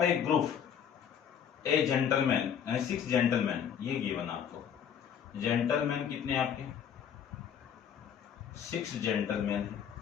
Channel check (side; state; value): right; quieter; 8.3 dB